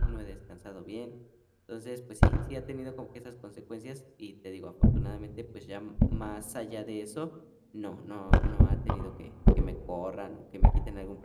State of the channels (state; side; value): identical; both; correlation 1.00